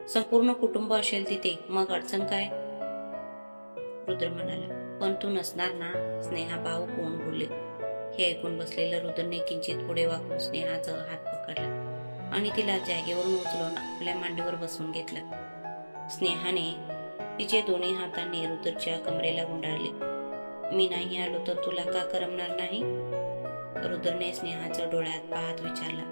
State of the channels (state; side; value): inverted; both; correlation -1.00